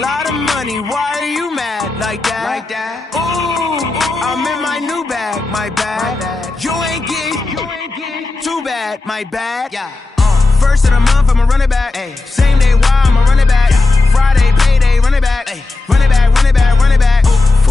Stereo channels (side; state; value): right; quieter; 3.3 dB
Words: of money, why are you mad like that? Ooh, I'm in my new bag, my bad. You ain't get too bad, my bad. Yeah. First of the month, I'ma run it back. Ay. Same day, why I'ma run it back. Friday, payday, run it back. Ay. Run it back, run it back, run it back.